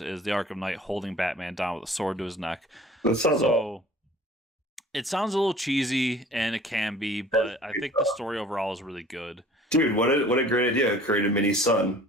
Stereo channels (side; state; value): both; normal; correlation 0.48